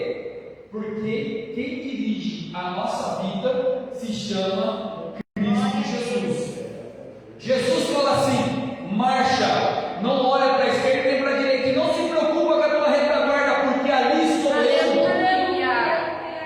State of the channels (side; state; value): both; identical; correlation 1.00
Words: Porque quem dirige a nossa vida se chama Cristo Jesus. Jesus fala assim: marcha, não olha para a esquerda nem para a direita, e não se preocupa com a tua retaguarda, porque ali estou eu.